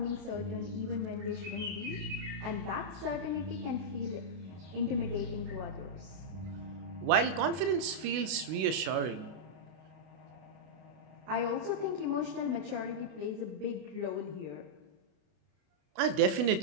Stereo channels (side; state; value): left; late; 32 ms